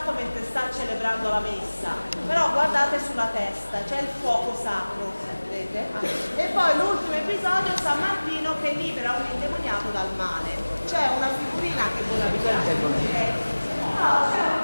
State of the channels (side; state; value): both; inverted; correlation -1.00